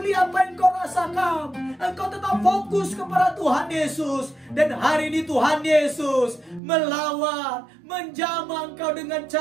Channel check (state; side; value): drops out; left; at 6.6 s